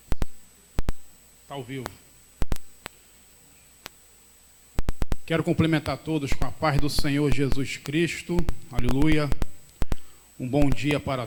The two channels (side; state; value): both; identical; correlation 1.00